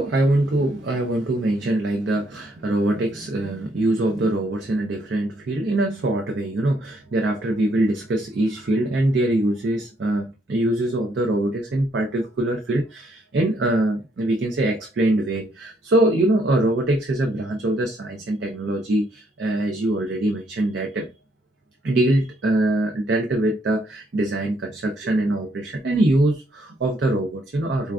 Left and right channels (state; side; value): normal; both; correlation 0.71